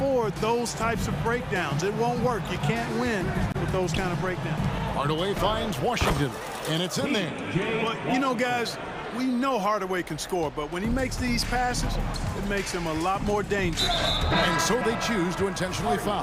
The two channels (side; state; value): both; identical; correlation 1.00